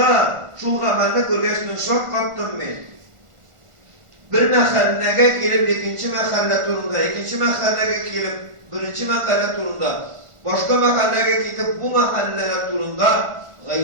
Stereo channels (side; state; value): left; late; 1.4 ms